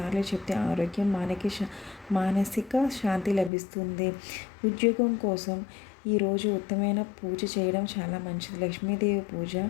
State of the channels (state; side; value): drops out; right; at 3.5 s